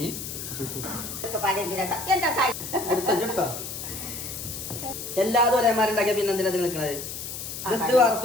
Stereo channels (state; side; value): noise; left; hiss, 8 dB below the sound